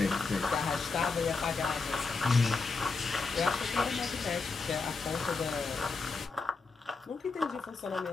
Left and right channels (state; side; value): quieter; right; 4.2 dB